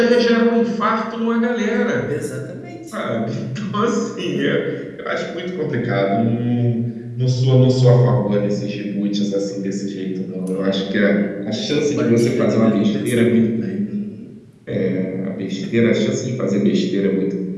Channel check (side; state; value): both; identical; correlation 1.00